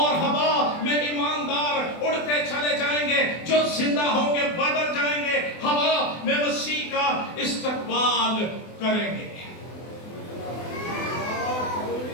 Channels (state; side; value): late; right; 24 ms